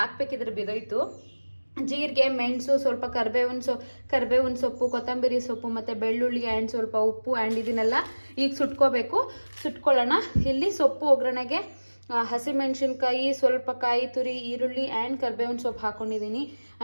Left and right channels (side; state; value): both; inverted; correlation -1.00